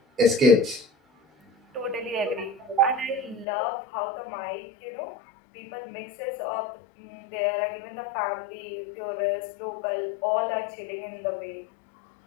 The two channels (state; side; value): drops out; right; at 3.5 s